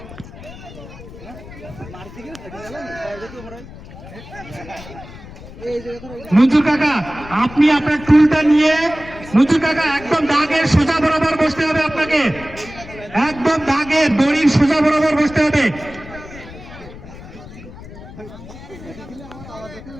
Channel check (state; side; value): noise; left; rumble, 16 dB below the sound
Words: মঞ্জুর কাকা, আপনি আপনার টুলটা নিয়ে মঞ্জুর কাকা একদম দাগের সোজা বরাবর বসতে হবে, আপনাকে একদম দাগের দড়ির সোজা বরাবর বসতে হবে।